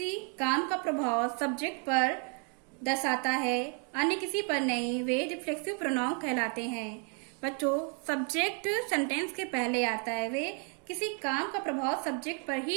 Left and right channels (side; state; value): left; quieter; 39.4 dB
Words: काम का प्रभाव सब्जेक्ट पर दर्शाता है, अन्य किसी पर नहीं, वे रिफ्लेक्सिव प्रोनाउन कहलाते हैं। बच्चों, सब्जेक्ट सेंटेंस के पहले आता है, वे किसी काम का प्रभाव सब्जेक्ट पर